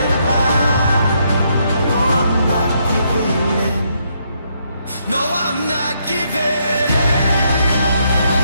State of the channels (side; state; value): both; inverted; correlation -0.75